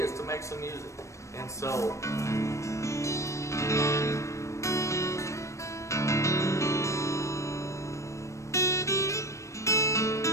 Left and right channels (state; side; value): late; right; 0.15 ms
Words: to make some music. And so,